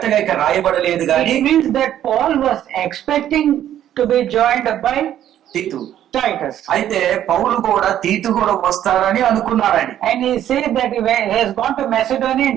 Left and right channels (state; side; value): quieter; left; 11.3 dB